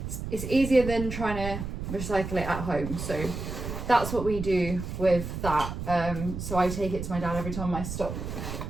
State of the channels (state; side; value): noise; right; rumble, 6 dB below the sound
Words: it's easier than trying to recycle it at home. So that's what we do with that. So I take it to my dad every time my stock